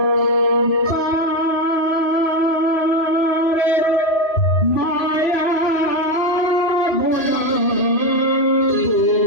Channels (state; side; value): late; right; 3.0 ms